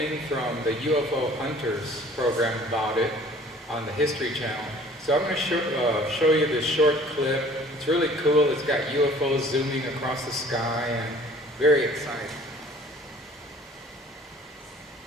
from the UFO Hunters program about it on the History Channel. So I'm going to show you this short clip. It's really cool. It's got UFOs zooming across the sky and very exciting.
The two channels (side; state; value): both; normal; correlation 0.51